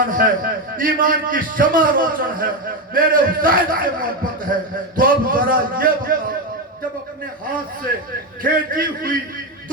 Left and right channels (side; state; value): both; normal; correlation 0.12